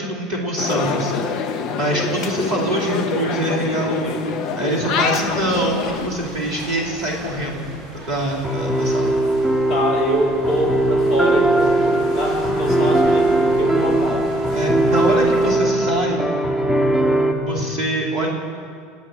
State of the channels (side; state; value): both; normal; correlation 0.59